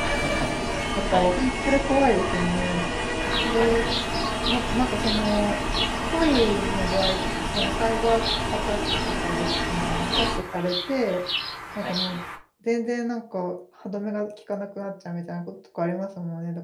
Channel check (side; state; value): both; identical; correlation 1.00